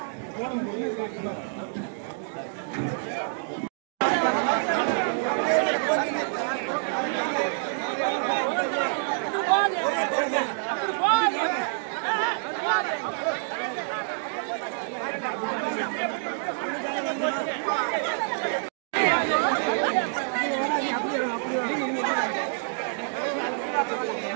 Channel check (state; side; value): silent; left; digital silence